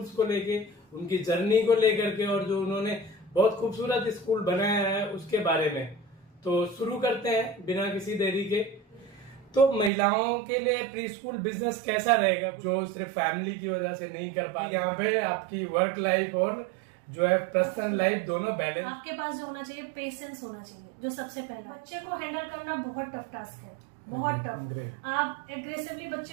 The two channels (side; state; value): left; drops out; at 9.9 s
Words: को लेके, उनकी जर्नी को लेकर के, और जो उन्होंने बहुत खूबसूरत स्कूल बनाया है उसके बारे में। तो शुरू करते हैं बिना किसी देरी के। तो महिलाओं के लिए प्री स्कूल बिजनेस कैसा रहेगा, जो सिर्फ फैमिली की वजह से नहीं कर पाती। यहाँ पे आपकी वर्क लाइफ और जो है पर्सनल लाइफ दोनों बैलेंस। आपके पास जो होना चाहिए, पेशेंस होना चाहिए। जो सबसे पहला, बच्चे को हैंडल करना बहुत टफ टास्क है, बहुत टफ। आप एग्रेसिवली